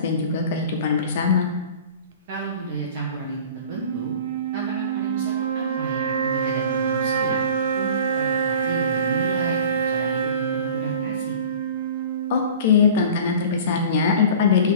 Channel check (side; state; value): both; inverted; correlation -0.42